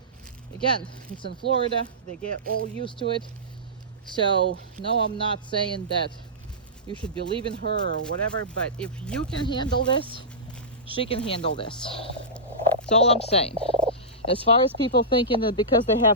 again, it's in Florida, they get all used to it. So no, I'm not saying that you should be leaving her or whatever, but if you can handle this, she can handle this. That's all I'm saying. As far as people thinking that because they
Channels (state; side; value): normal; both; correlation -0.17